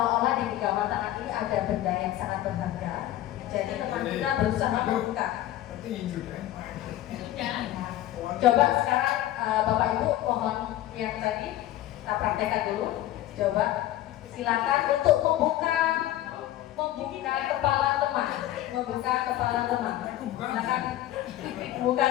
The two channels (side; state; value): right; quieter; 13.9 dB